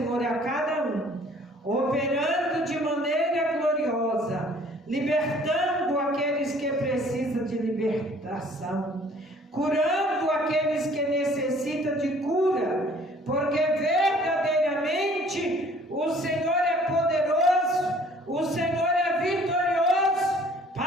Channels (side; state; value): both; normal; correlation 0.55